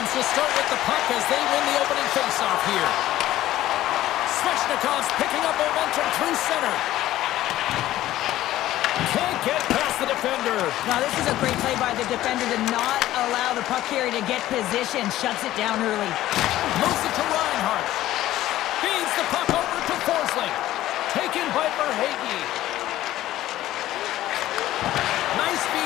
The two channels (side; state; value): right; quieter; 14.5 dB